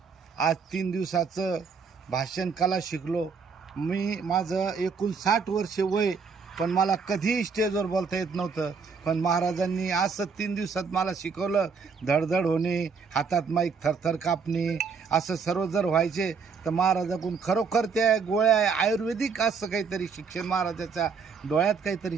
आज 3 दिवसाचं भाषण कला शिकलो. माझं एकूण 60 वर्ष वय, पण मला कधीही स्टेजवर बोलता येत नव्हतं. पण महाराजांनी असं 3 दिवसात मला शिकवलं. धडधड होणे, हातात माईक थरथर कापणे, असं सर्व जर व्हायचे तर महाराजाकडून खरोखर त्या गोळ्या आयुर्वेदिक असं काहीतरी शिक्षण, महाराजाच्या डोळ्यात काहीतरी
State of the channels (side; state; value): left; quieter; 5.4 dB